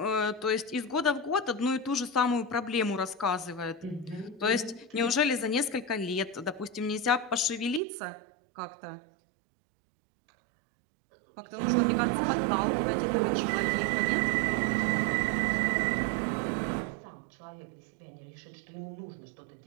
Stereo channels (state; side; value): drops out; left; at 7.8 s